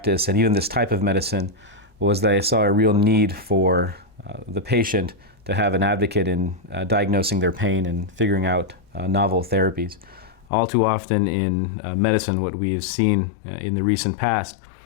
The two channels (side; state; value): right; drops out; at 10.5 s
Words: and even this type of medicine was that I saw a real need for the patient to have an advocate in diagnosing their pain and figuring out novel therapies. All too often in medicine, what we have seen in the recent past